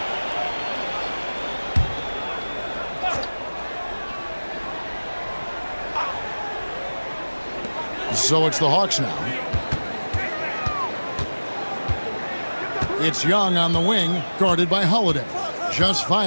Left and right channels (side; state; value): both; inverted; correlation -1.00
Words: So it's the Hawks now. It's Young on the wing, guarded by Holiday. Just